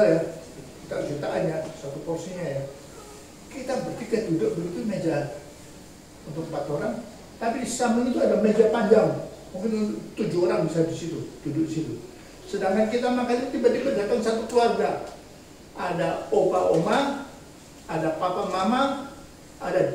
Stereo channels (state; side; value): identical; both; correlation 1.00